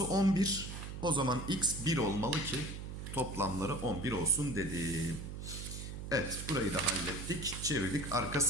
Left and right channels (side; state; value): right; noise; hum, 8 dB below the sound